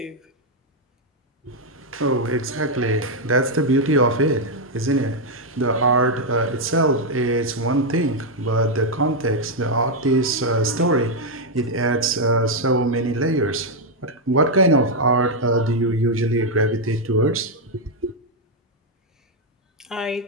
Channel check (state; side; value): normal; both; correlation 0.00